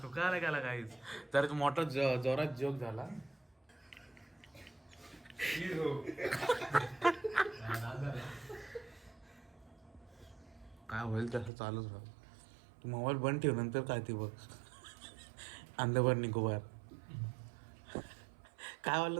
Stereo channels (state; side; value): drops out; left; at 11.5 s